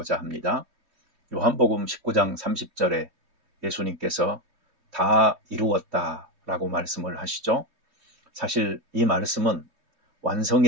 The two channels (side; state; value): left; late; 3.0 ms